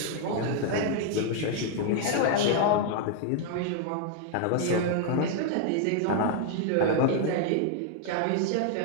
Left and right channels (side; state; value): both; different; correlation 0.00